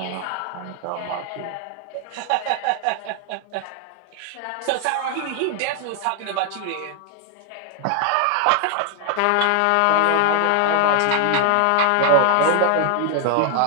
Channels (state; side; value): different; both; correlation 0.00